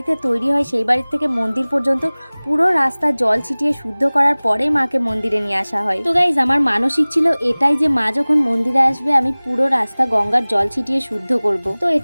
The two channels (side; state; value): both; inverted; correlation -1.00